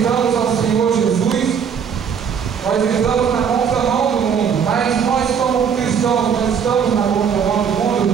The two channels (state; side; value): quieter; left; 7.2 dB